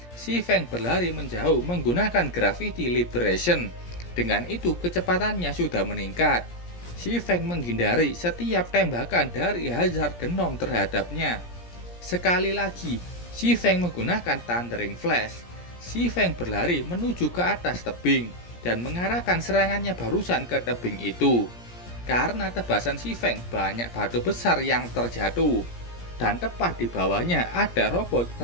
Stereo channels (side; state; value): right; late; 17 ms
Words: Si Feng berlari menjauh menggunakan Gravity Liberation. Dengan itu kecepatannya sudah meningkat. Si Feng menghindari setiap tembakan dari Hazard Gnome terhadapnya. Sekali lagi, si Feng menggunakan Thundering Flash. Si Feng berlari menuju ke atas tebing dan mengarahkan serangannya barusan ke tebing itu. Karena tebasan si Feng banyak batu besar yang terjatuh, dan tepat di bawahnya ada robot